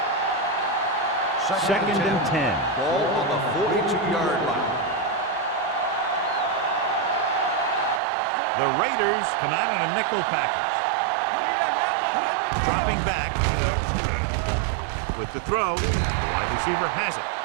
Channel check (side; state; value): left; drops out; at 8.0 s